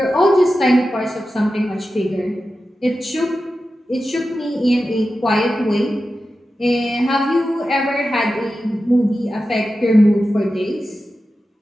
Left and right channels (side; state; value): both; normal; correlation 0.92